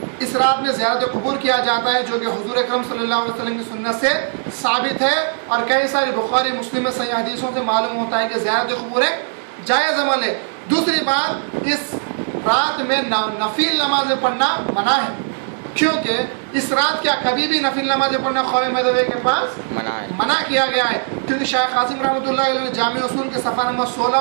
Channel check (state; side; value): silent; left; 66 dB below the other